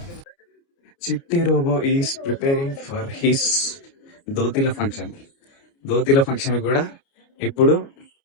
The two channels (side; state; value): right; late; 29 ms